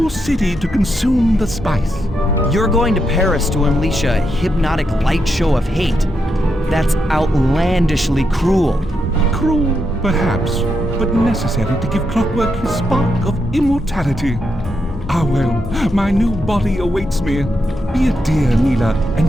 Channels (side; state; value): both; normal; correlation 0.83